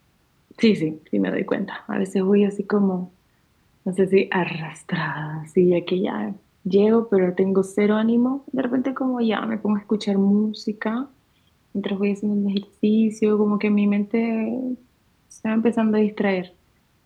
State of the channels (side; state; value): both; identical; correlation 1.00